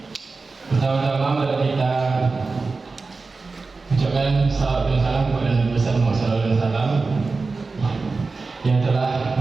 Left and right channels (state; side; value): quieter; left; 4.0 dB